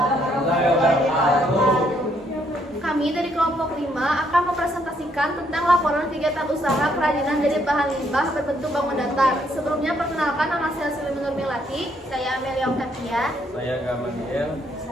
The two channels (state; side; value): normal; both; correlation 0.71